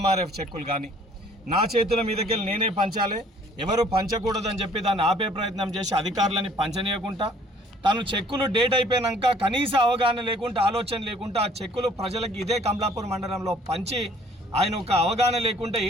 చెక్కులు కానీ నా చేతుల మీదకెళ్ళి నేనే పంచాలి, ఎవరు పంచకూడదని చెప్పి దాన్ని ఆపే ప్రయత్నం చేసి అధికారులని పంచనీయకుండా తను చెక్కులు డేట్ అయిపోయినాక కనీస అవగాహన లేకుండా ఆలోచన లేకుండా ఆ చెక్కులు ప్రజలకు ఇదే కమలాపూర్ మండలంలో పంచి ఆయన ఒక అవగాహన లేకుండా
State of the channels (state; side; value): normal; both; correlation 0.57